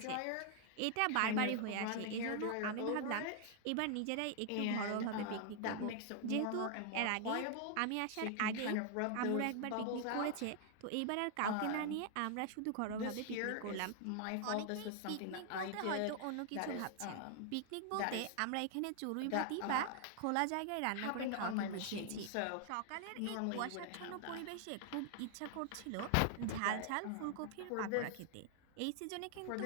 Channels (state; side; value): different; both; correlation 0.00